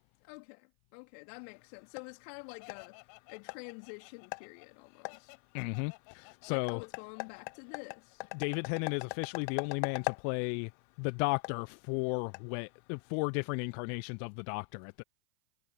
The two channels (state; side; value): silent; right; 51 dB below the other